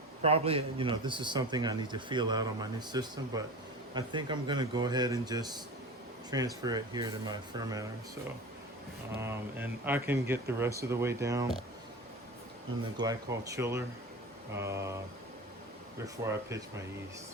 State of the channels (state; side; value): normal; both; correlation 0.32